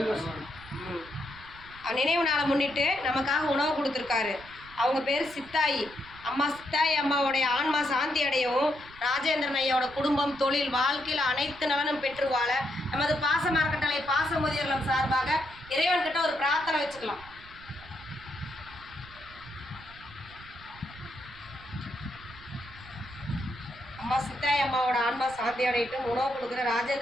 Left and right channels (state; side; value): noise; right; rumble, 20 dB below the sound